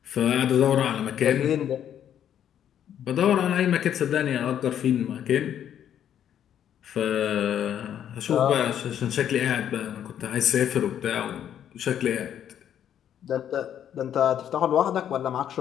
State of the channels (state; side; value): quieter; right; 9.9 dB